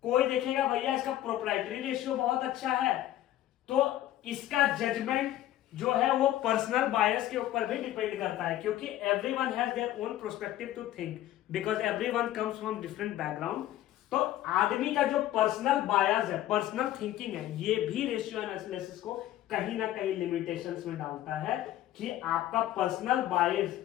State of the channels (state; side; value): quieter; right; 13.5 dB